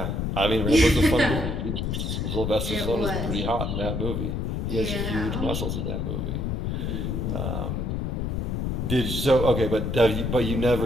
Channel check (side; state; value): left; noise; rumble, 1 dB below the sound